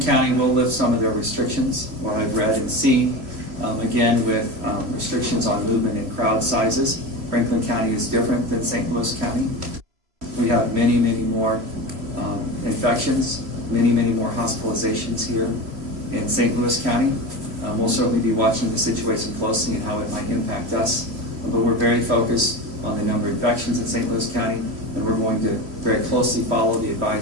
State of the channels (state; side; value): late; left; 3.0 ms